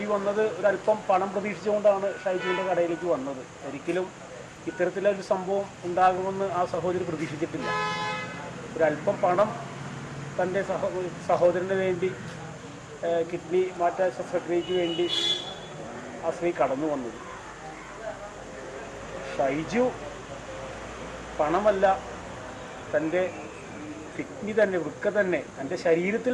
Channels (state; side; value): identical; both; correlation 1.00